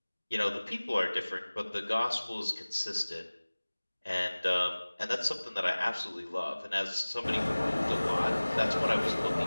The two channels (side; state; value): both; inverted; correlation -1.00